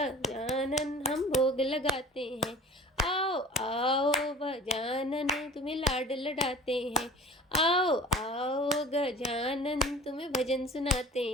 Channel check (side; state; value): both; normal; correlation 0.43